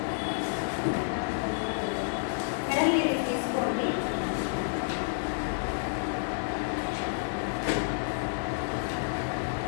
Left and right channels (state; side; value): silent; right; 58 dB below the other